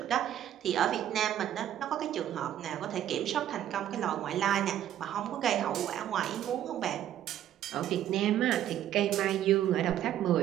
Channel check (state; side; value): quieter; left; 11.4 dB